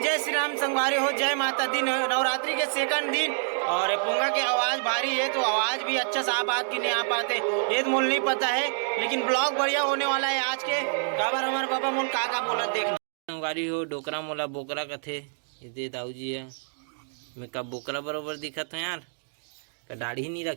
जय श्री राम संगवारी हो, जय माता दी। नवरात्रि के सेकंड दिन और पोंगा की आवाज भारी है तो आवाज भी अच्छा साफ बात की नहीं आ पाते ये तो मोल नहीं पता है, लेकिन ब्लॉग बढ़िया होने वाला है आज के। काबर हमारे बाबा मोल का बोला देखना संगवारी हो। डोकरा मोला बोकरा कथे ये दाऊ जी है। मैं का बोकरा बरोबर दिखत है यार, का दाढ़ी नहीं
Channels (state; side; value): silent; left; digital silence